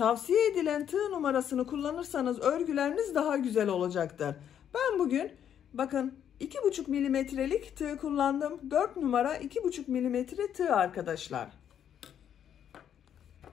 edilen tığ numarasını kullanırsanız örgüleriniz daha güzel olacaktır. Ben bugün bakın 2,5 milimetrelik tığ kullandım. 4 numara 2,5 milimetre tığ arkadaşlar.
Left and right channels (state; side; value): quieter; right; 9.3 dB